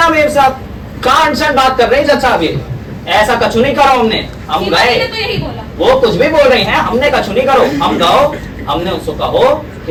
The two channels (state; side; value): identical; both; correlation 1.00